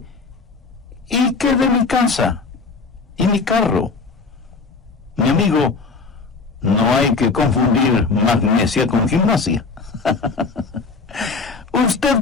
¿y qué de mi casa? ¿Y mi carro? Mi amigo, no hay que confundir magnesia con gimnasia. Usted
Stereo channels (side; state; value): right; quieter; 4.4 dB